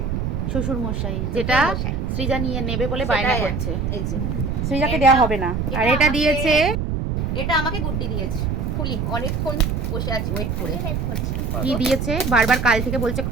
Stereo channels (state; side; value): noise; right; rumble, 1 dB below the sound